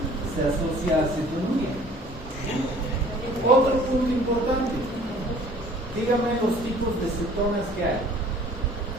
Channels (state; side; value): normal; both; correlation 0.52